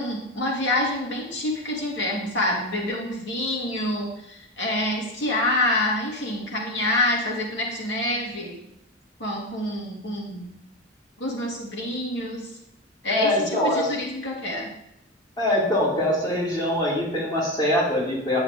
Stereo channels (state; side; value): normal; both; correlation 0.17